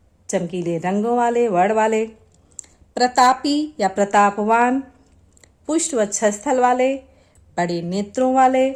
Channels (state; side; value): identical; both; correlation 1.00